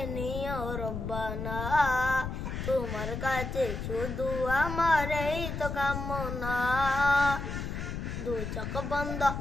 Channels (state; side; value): noise; left; rumble, 5 dB below the sound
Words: নিও রব্বানা, তোমার কাছে শুধু আমার এই তো কামনা। দু চোখ বন্ধ